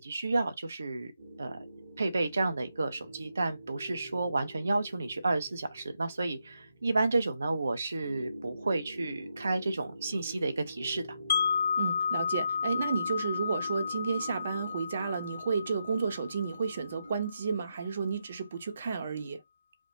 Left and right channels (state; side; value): inverted; both; correlation -0.84